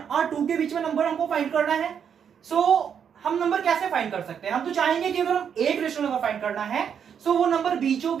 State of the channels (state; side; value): quieter; left; 7.8 dB